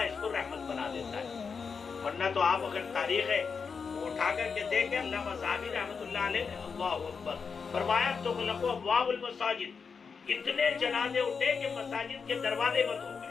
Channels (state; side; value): quieter; right; 5.6 dB